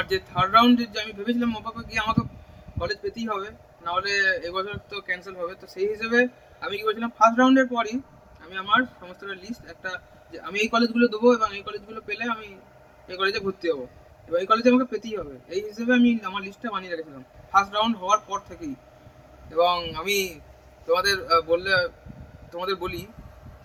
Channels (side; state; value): both; identical; correlation 1.00